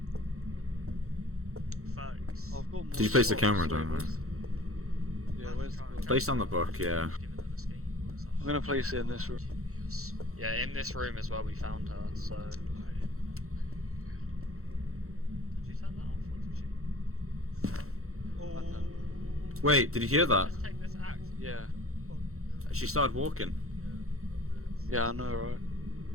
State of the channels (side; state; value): left; late; 0.63 ms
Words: Thanks. I've got more Did you place the slots, camera so down? where's- Yeah, where's the book? Placed on the book, yeah. I'm gonna place it in this room. Yeah, in this room is where we found her, so... Did you turn that off, or did you? Oh. Wait, did you hear that? Let's take this axe. Yeah. She started walking. Yeah, I know, right?